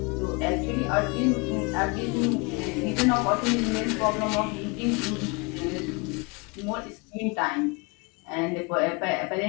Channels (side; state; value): right; quieter; 29.8 dB